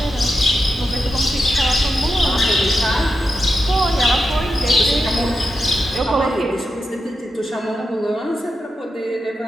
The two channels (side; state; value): both; normal; correlation 0.87